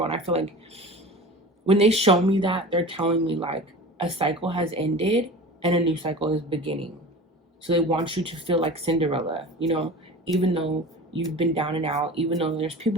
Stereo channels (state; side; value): normal; both; correlation 0.36